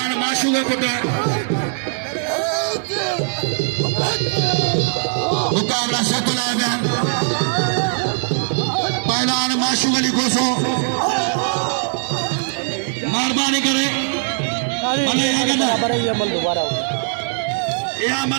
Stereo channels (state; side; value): silent; left; 56 dB below the other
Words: माशूका पुत्र मुकाबला सतला बयान पहलवान माशूक अली गोसो मेहरबानी करे भले दोबारा या